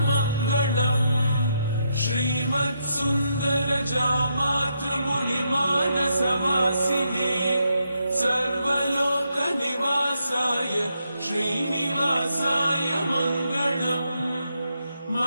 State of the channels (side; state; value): both; inverted; correlation -0.80